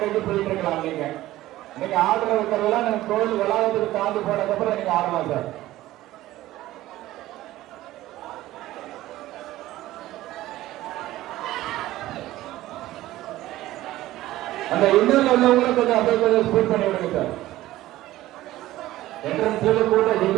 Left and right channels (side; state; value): left; quieter; 15.8 dB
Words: போயிட்டு இருக்கலாம். நீங்க ஆர்டர் வைக்கிறதெல்லாம் நீங்க கோயில் வளாகத்துக்கு தாண்டி போனதுக்கப்புறம் நீங்க ஆடலாம் சார். அந்த இன்னொரு உள்ளவங்களும் கொஞ்சம் அப்படியே கொஞ்சம் ஸ்பீட் பண்ணி விடுங்க சார். என்ட்ரன்ஸ்ல கூட